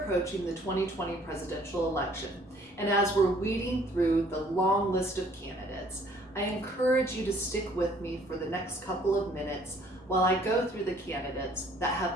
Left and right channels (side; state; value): both; normal; correlation 0.59